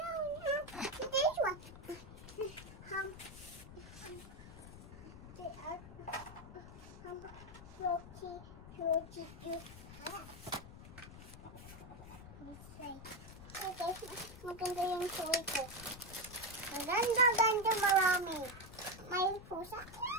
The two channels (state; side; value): noise; left; rumble, 14 dB below the sound